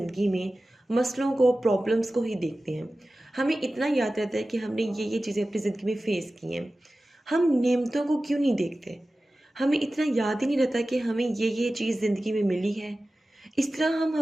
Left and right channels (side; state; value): both; normal; correlation 0.95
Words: में मसलों को, प्रॉब्लम्स को ही देखते हैं। हमें इतना याद रहता है कि हमने ये चीज़ें अपनी ज़िंदगी में फेस की हैं। हम नेमतों को क्यों नहीं देखते? हमें इतना याद ही नहीं रहता कि हमें ये चीज़ ज़िंदगी में मिली है। इस तरह हम